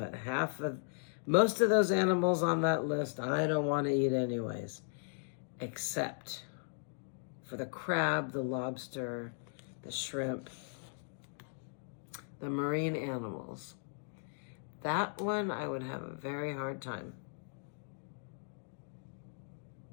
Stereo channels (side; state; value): right; silent; digital silence